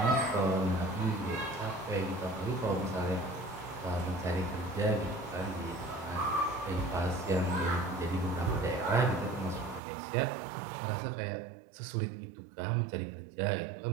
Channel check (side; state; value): left; drops out; at 9.8 s